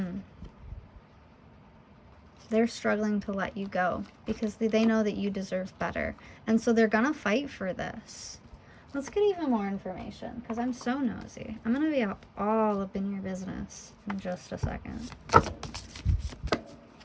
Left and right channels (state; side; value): identical; both; correlation 1.00